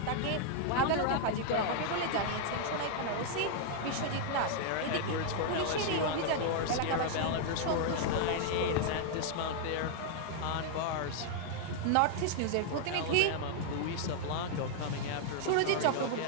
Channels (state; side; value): different; both; correlation -0.01